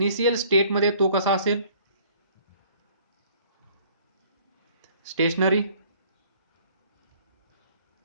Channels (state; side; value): inverted; both; correlation -0.56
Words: स्टेट मध्ये तो कसा असेल? स्टेशनरी.